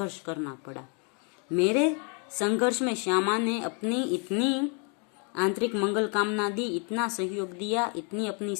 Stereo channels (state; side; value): quieter; right; 36.8 dB